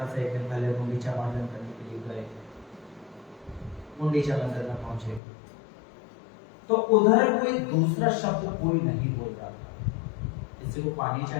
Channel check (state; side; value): drops out; right; at 5.2 s